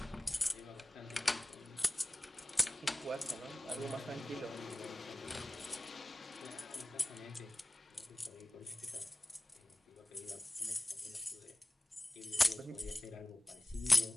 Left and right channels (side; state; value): both; normal; correlation 0.98